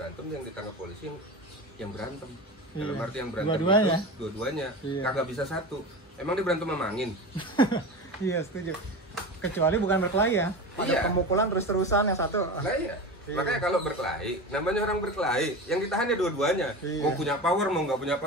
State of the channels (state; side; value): normal; both; correlation 0.27